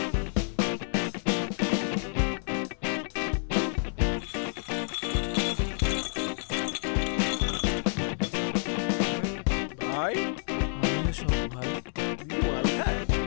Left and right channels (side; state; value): right; silent; 59 dB below the other